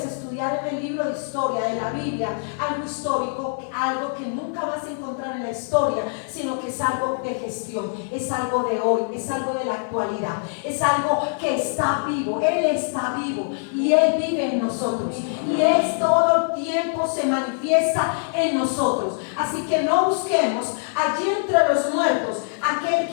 estudiar en el libro de historia de la Biblia algo histórico, algo que nunca vas a encontrar en la historia, sino que es algo de gestión, es algo de hoy, es algo de la actualidad, es algo que está vivo. Él está vivo y Él vive en nosotros, y Él todo el tiempo se manifiesta en nosotros. Así que no busquemos allí entre los muertos aquel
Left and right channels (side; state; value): right; silent; digital silence